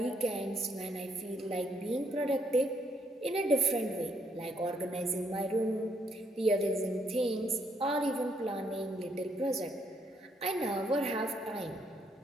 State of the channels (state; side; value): normal; both; correlation 0.73